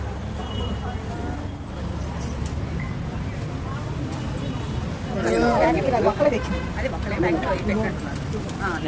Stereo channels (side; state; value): both; identical; correlation 1.00